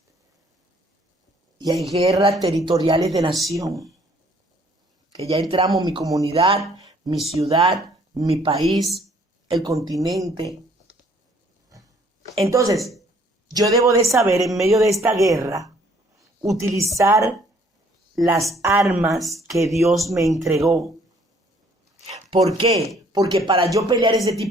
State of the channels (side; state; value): both; normal; correlation 0.61